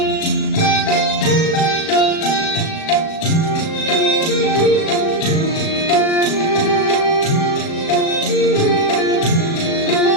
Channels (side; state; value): right; late; 37 ms